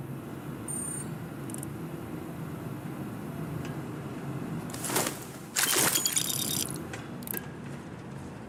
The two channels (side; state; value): both; identical; correlation 1.00